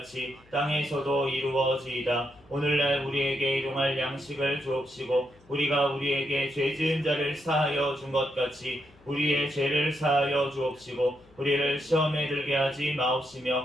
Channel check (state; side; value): noise; left; hum, 28 dB below the sound